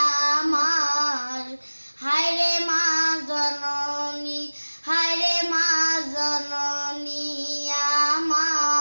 আমার, হায়রে মা জননী, হায়রে মা জননী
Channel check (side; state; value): both; inverted; correlation -1.00